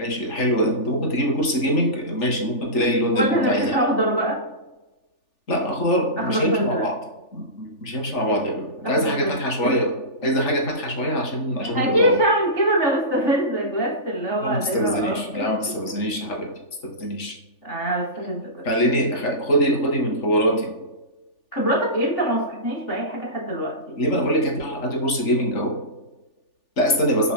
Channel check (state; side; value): late; right; 3.4 ms